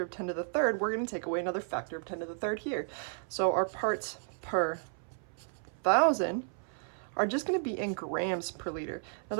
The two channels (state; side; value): silent; left; 56 dB below the other